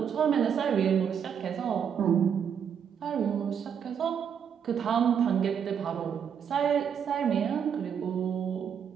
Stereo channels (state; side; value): quieter; left; 7.8 dB